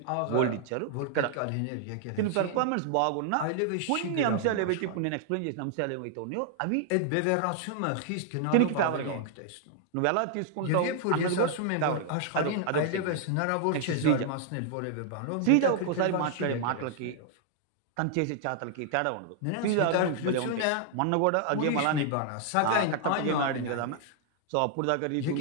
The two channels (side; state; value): both; different; correlation 0.00